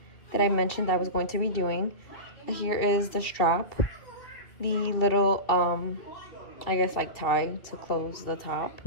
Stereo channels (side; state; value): right; late; 2.7 ms